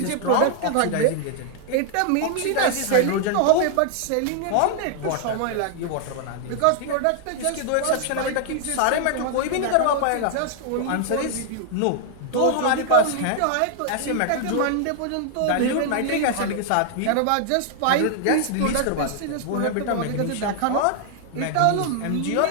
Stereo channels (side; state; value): both; different; correlation 0.00